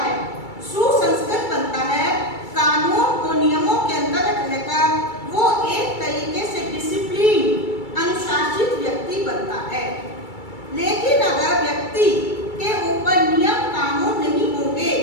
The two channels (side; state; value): right; late; 2.3 ms